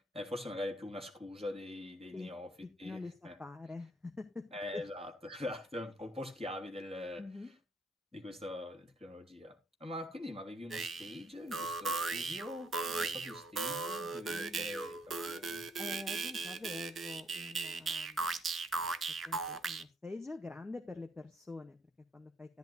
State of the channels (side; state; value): both; normal; correlation 0.67